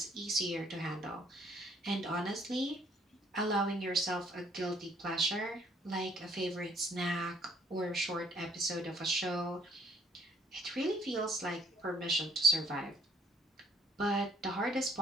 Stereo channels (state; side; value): normal; both; correlation 0.63